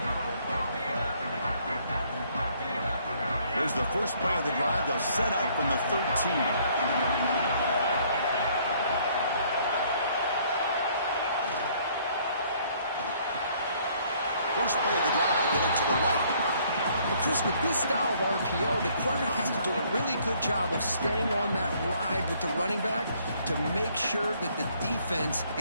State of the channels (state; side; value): inverted; both; correlation -0.63